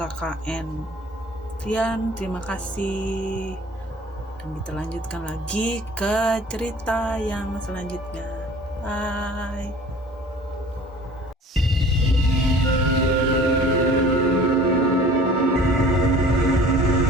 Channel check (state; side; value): normal; both; correlation 0.47